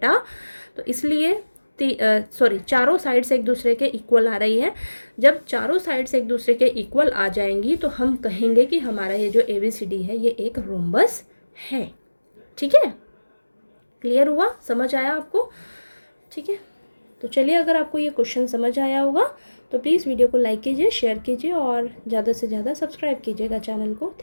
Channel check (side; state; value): both; inverted; correlation -1.00